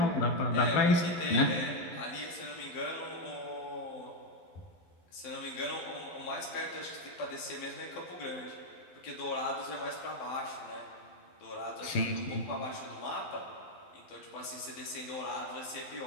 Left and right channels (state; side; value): late; right; 11 ms